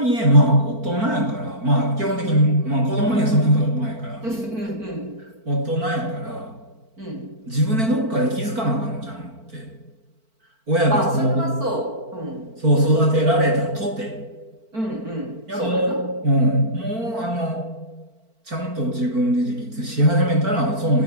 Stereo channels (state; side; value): late; left; 4.5 ms